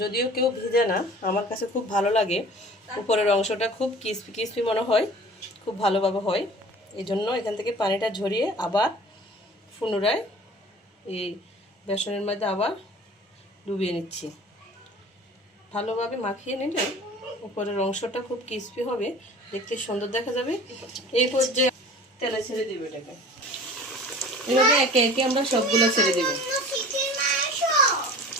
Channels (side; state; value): both; normal; correlation 0.43